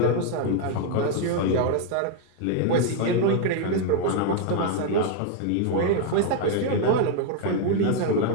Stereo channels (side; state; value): both; different; correlation 0.01